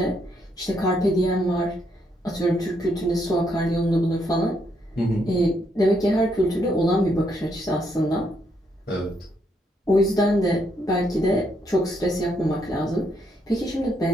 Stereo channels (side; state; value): both; normal; correlation 0.75